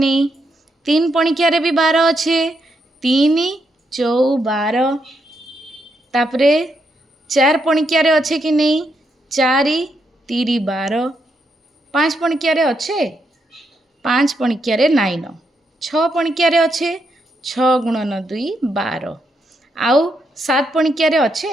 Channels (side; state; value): both; normal; correlation 0.80